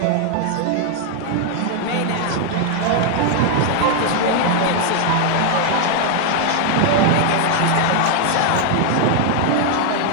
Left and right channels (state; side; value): different; both; correlation 0.00